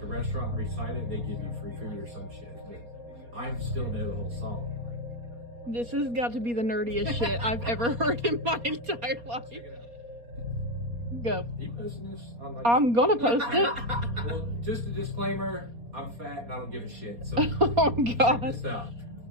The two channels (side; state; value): left; late; 4.2 ms